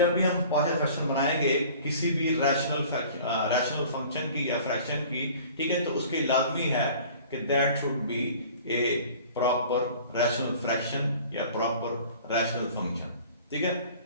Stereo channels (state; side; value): inverted; both; correlation -0.47